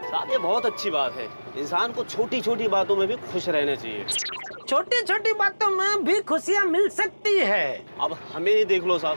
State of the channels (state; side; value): inverted; both; correlation -1.00